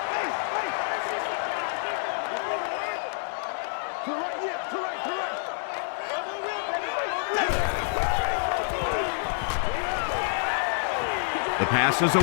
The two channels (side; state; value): right; silent; digital silence